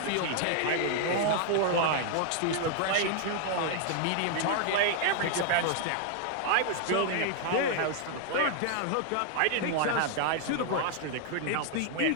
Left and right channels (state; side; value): different; both; correlation 0.00